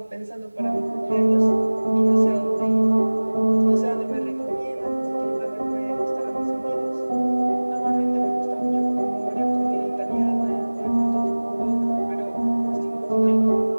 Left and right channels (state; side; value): inverted; both; correlation -1.00